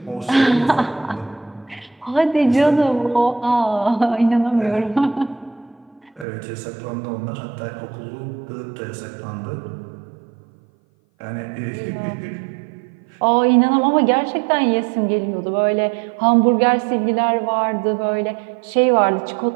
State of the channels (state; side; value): drops out; left; at 6.2 s